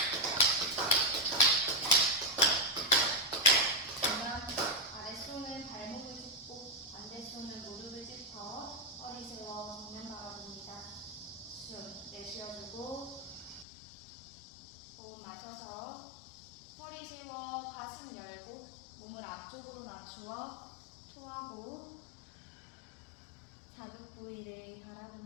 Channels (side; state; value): right; drops out; at 13.7 s